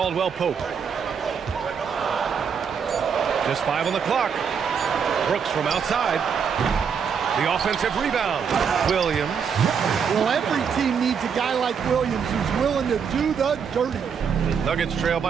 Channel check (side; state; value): left; quieter; 6.8 dB